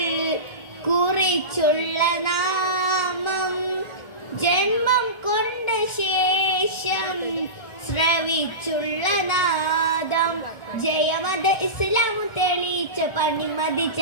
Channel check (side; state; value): right; late; 1.4 ms